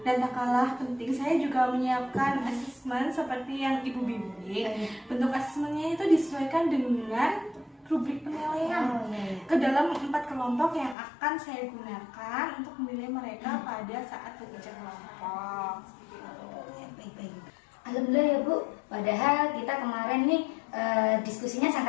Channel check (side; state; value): right; drops out; at 11.0 s